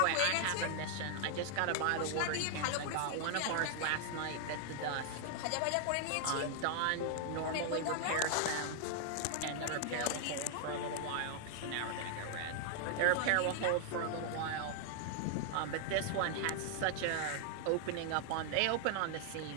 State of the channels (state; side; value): different; both; correlation 0.00